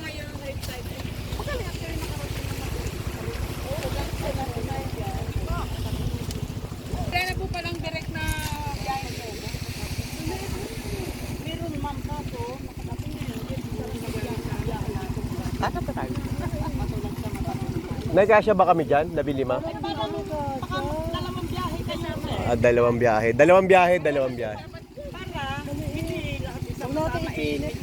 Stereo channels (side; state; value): both; identical; correlation 1.00